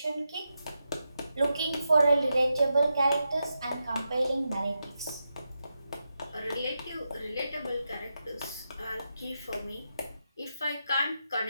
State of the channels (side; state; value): both; inverted; correlation -0.87